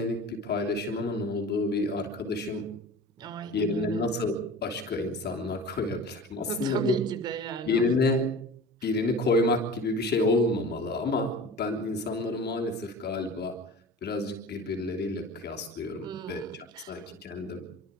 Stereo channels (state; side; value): normal; both; correlation 0.38